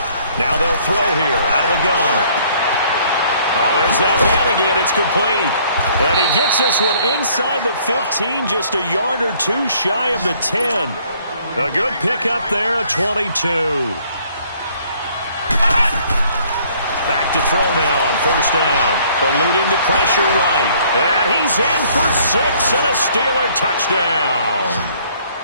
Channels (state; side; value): inverted; both; correlation -0.61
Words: Now they'll throw here out of the gun. Oh, there's that man again. It's complete. And he gets this one inside the 15, just a yard or two shy of the 10. A good pickup there, a 22. Back to throw now on first down. Eluding the pressure right. And he's in for 6 and a Steeler touchdown.